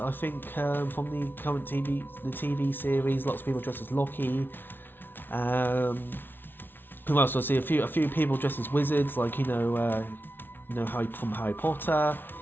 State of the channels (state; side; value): late; right; 0.099 ms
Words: think from the current TV series, lots of people dressed as Loki. Who else? I see a few people dressed as wizards, like Harry from Harry Potter.